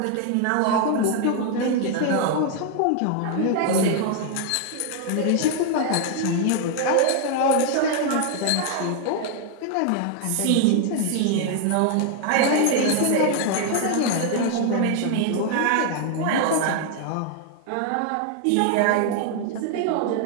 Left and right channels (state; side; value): different; both; correlation 0.00